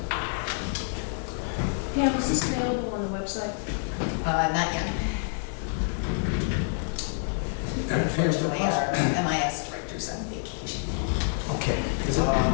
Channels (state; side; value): silent; right; 60 dB below the other